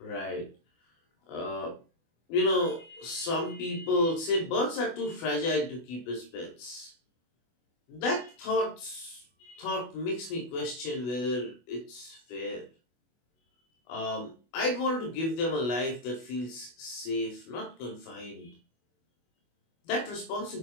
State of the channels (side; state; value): right; late; 24 ms